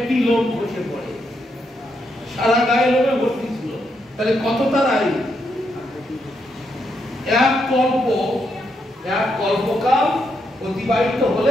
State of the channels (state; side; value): normal; both; correlation 0.79